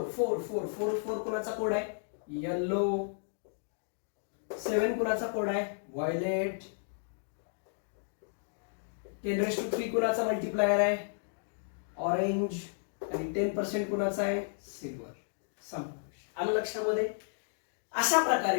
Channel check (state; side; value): silent; right; digital silence